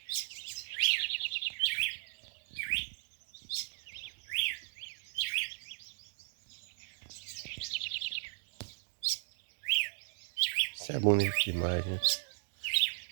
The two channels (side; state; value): left; silent; digital silence